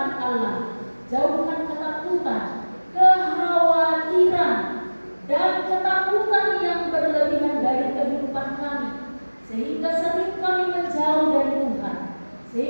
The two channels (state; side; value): inverted; both; correlation -1.00